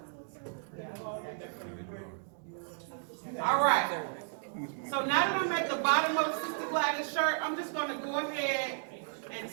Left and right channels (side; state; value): left; silent; digital silence